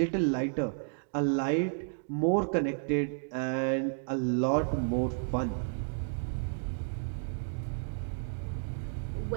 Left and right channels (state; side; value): silent; left; digital silence